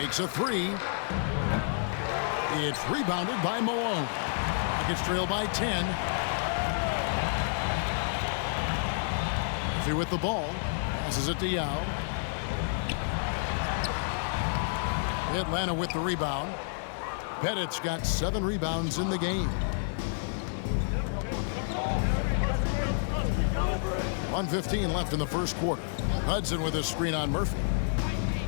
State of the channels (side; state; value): right; silent; digital silence